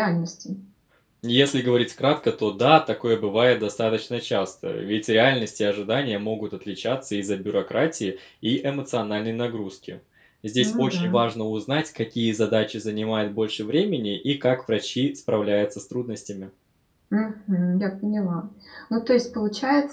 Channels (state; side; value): identical; both; correlation 1.00